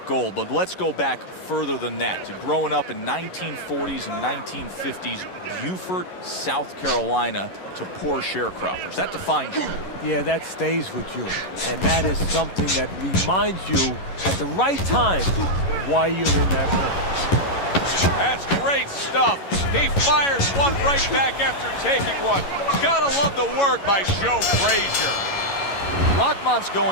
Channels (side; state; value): right; late; 11 ms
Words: gold, but let's go back further than that to growing up in 1940s and 1950s Beaufort, South Carolina, to poor sharecroppers. That defines you. Yeah, that stays with you. And that is something that reminds you at the right time why you're in that ring. That's great stuff. He fires one right back after taking one. Gotta love the work by Joe Frazier. Rahman's